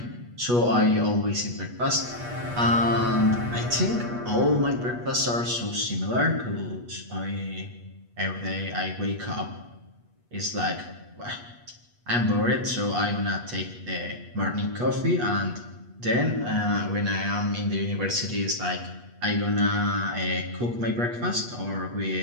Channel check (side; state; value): left; late; 8.3 ms